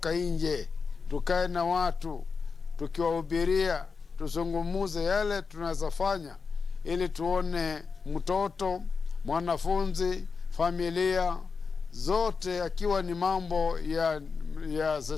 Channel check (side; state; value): right; quieter; 5.1 dB